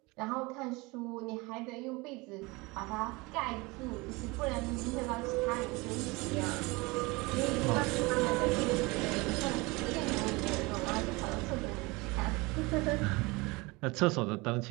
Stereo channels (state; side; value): quieter; left; 24.6 dB